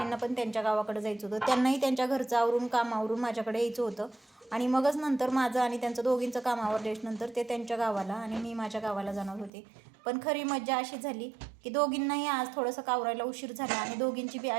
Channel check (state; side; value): drops out; left; at 9.5 s